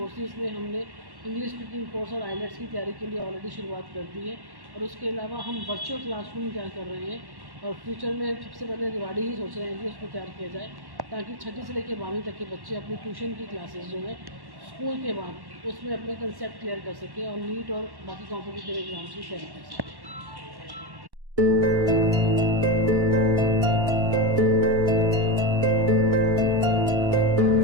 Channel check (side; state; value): left; late; 1.1 ms